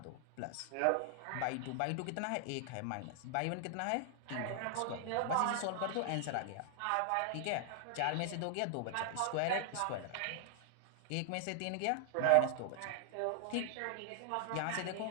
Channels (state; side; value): different; both; correlation 0.00